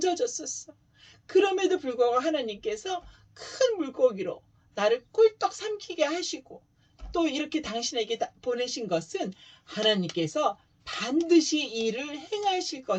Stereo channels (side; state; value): both; identical; correlation 1.00